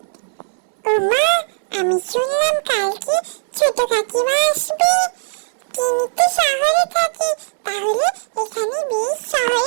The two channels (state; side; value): silent; left; digital silence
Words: ওমা, আমি শুনলাম কালকে ছোট কাকিমা আসবে। তিনি তো শহরে থাকে, তাহলে এখানে বেশ